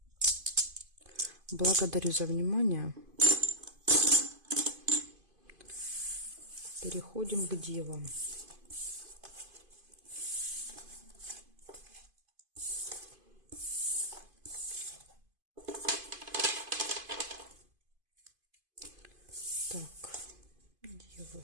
Благодарю за внимание. Переходим к девам. Так, девы.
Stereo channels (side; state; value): left; late; 2.5 ms